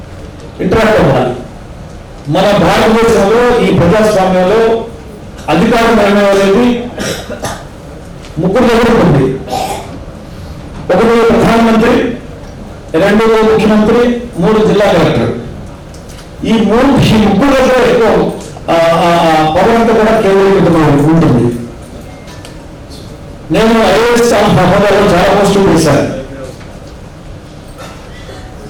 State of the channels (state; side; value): identical; both; correlation 1.00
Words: ఇంటరాక్ట్ అవ్వాలి. మన భారతదేశంలో ఈ ప్రజాస్వామ్యంలో అధికారం అనేది ముగ్గురు దగ్గర ఉంది. ఒకటి ప్రధానమంత్రి, రెండు ముఖ్యమంత్రి, మూడు జిల్లా కలెక్టర్. ఈ ముగ్గురు దగ్గర ఎక్కువ పవర్ అంతా కూడా కేంద్రీకృతమై ఉంటుంది. నేను ఐఏఎస్ హోదాలో చాలా పోస్టులు చేశాను.